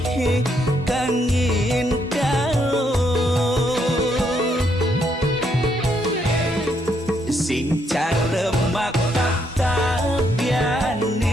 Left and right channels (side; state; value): both; normal; correlation 0.74